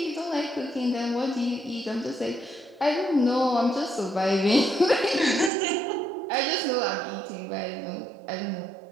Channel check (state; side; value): drops out; left; at 5.5 s